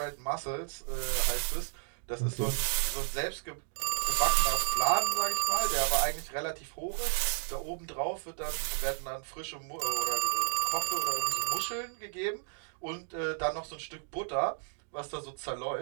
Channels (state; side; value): silent; left; digital silence